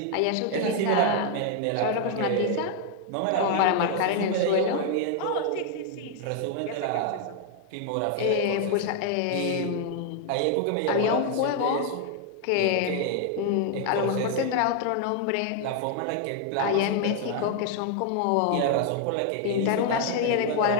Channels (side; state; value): both; different; correlation 0.00